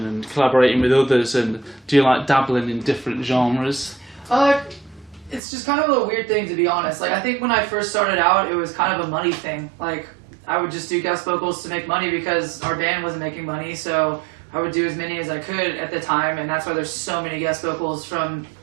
and collaborating with others? And do you like dabbling in different genres? It's just kind of a weird thing, to be honest. Like, I think when I first started out, it was kind of a money thing. Like, I would just do guest vocals to make money because our band wasn't making money, so I would do as many as I could at the time, and that's why there's so many guest vocals from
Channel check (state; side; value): drops out; left; at 5.4 s